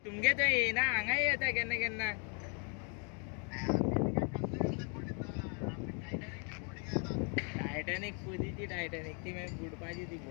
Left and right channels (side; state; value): right; quieter; 37.8 dB